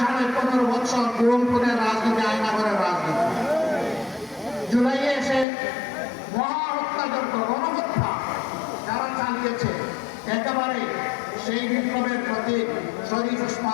15.5 বছর বিরোধপুরের রাজনীতি, আয়নাগরের রাজনীতি, জুলাইয়ে এসে মহা হত্যাযজ্ঞ, গণহত্যা যারা চালিয়েছে, একেবারে সেই বিপ্লবের প্রতি শরীফ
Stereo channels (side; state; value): right; drops out; at 5.5 s